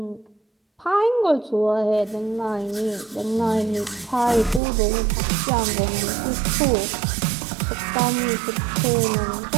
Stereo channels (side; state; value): left; drops out; at 4.6 s